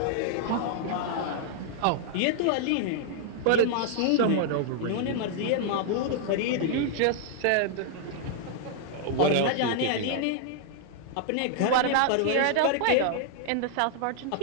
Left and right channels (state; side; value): different; both; correlation -0.01